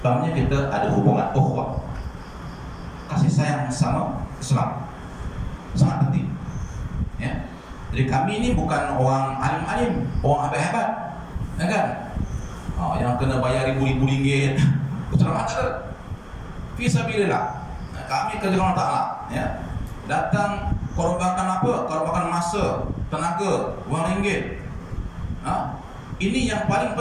Pertamanya kita ada hubungan ukhuwah, kasih sayang sama Islam, sangat penting. Ya. Jadi kami ini bukan orang alim-alim, orang hebat-hebat, ya kan? Yang kena bayar ribu-ribu ringgit, ceramah tak ada. Fisabilillah. Kami kerja Allah Ta'ala, ya. Datang korbankan apa? Korbankan masa, tenaga, wang ringgit. Ini yang paling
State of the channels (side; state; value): both; identical; correlation 1.00